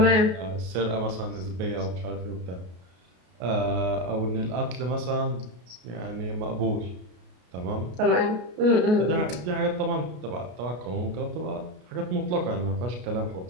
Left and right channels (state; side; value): late; left; 33 ms